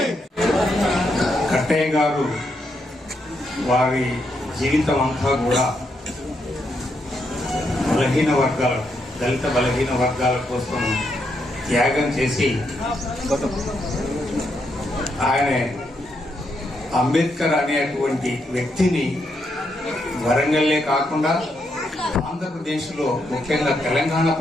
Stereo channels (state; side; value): normal; both; correlation 0.79